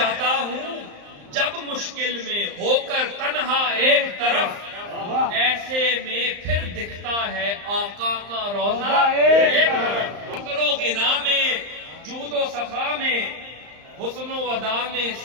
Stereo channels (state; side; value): late; left; 35 ms